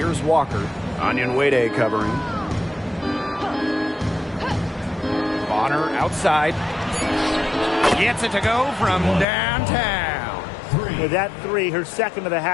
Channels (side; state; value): right; drops out; at 9.2 s